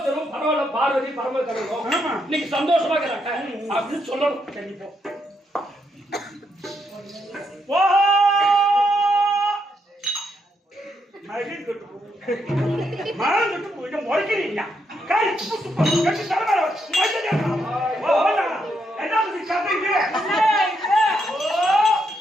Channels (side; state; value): both; normal; correlation 0.78